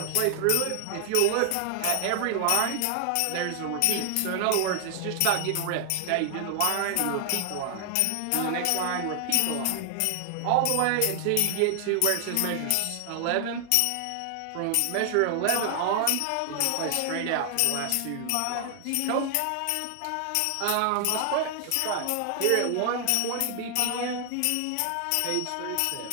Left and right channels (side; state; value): both; different; correlation 0.00